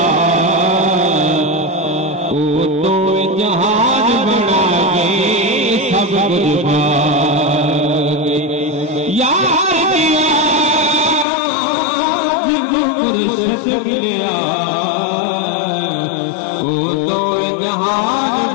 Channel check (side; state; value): right; drops out; at 11.2 s